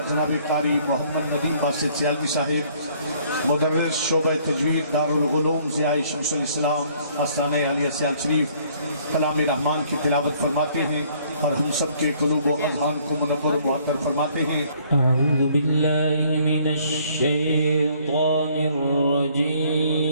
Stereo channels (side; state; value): both; inverted; correlation -0.62